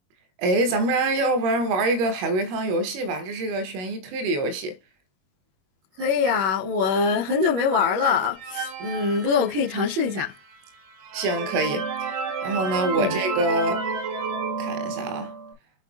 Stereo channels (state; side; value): late; left; 21 ms